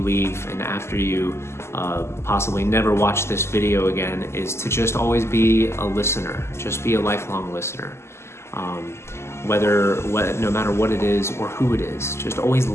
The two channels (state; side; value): late; right; 0.13 ms